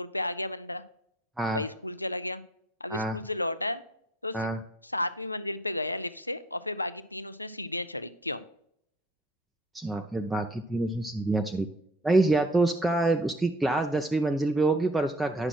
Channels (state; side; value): normal; both; correlation 0.48